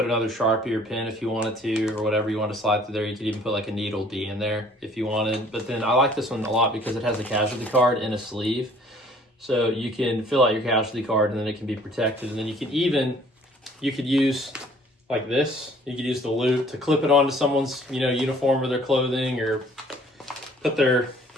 another Sharpie or pen if you wanted to, or whatever you want to slide through there. You could even put like a needle D in there if you wanted. But then I like this one a lot because it has a casualty card in a sleeve. So you can fill out your casualty card and then it can be protected. And then you could use like this. You could use the loop to clip it onto someone's, you know, uniform or their clothing, or put their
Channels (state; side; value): normal; both; correlation 0.56